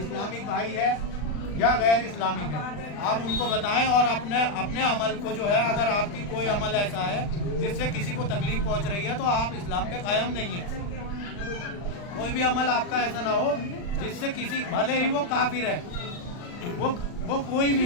بھائی ہے یا غیر اسلامک ہے، آپ ان کو بتائیں، اور اپنے عمل کو جو ہے، اگر آپ کی کوئی عمل ایسا ہے جس سے کسی کو تکلیف پہنچ رہی ہے تو آپ اسلام کے قائم نہیں ہیں۔ کوئی بھی عمل آپ کا ایسا نہ ہو جس سے کسی، بھلے ہی وہ کافر ہے، وہ کوئی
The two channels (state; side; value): late; right; 39 ms